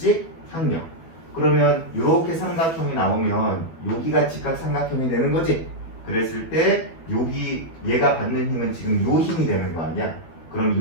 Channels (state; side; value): late; right; 12 ms